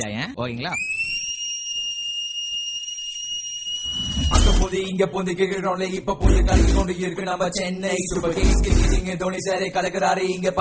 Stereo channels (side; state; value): both; identical; correlation 1.00